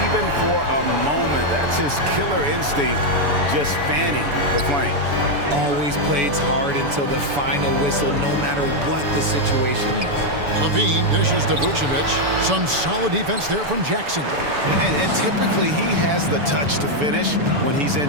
even for a moment. That's his killer instinct, just fanning the flames. Always plays hard until the final whistle, no matter what the situation is. Levine dishes to Vucevic. Some solid defense there from Jackson. And typically he has the touch to finish when he's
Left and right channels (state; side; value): late; left; 7.0 ms